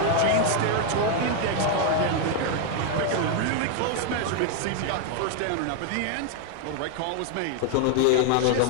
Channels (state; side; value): different; both; correlation 0.00